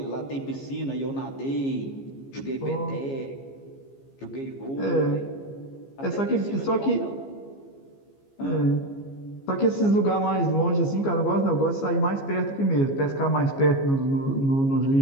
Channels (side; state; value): right; late; 15 ms